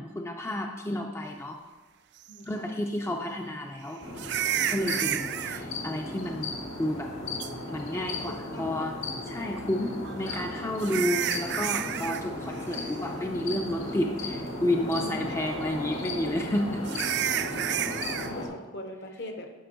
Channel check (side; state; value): both; normal; correlation 0.53